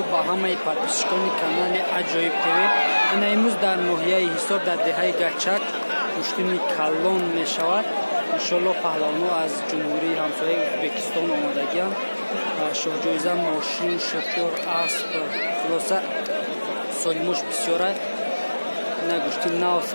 ба ҳамаи подписчикони канали Аҷоиб ТВ. Ана имрӯз дар ноҳияи Ҳисор дар деҳаи Гачак куштини калон мешавад. Иншоаллоҳ паҳлавонҳо аз ҷумҳурии ҳамсояи Ӯзбекистон омадагианд. Шоҳҷоиза, мошин, шофёр, асп, хулоса солимош бисёрай. Ина гӯшти нав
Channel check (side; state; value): both; inverted; correlation -1.00